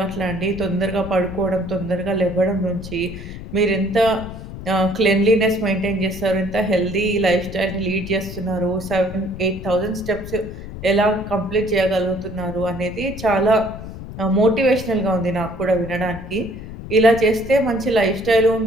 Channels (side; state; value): left; noise; rumble, 11 dB below the sound